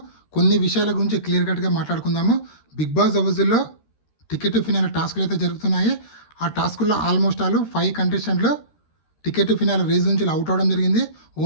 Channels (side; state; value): right; late; 13 ms